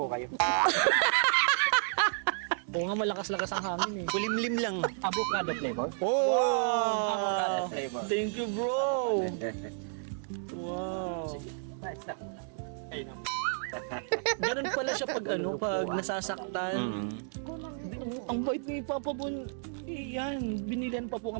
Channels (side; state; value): left; silent; digital silence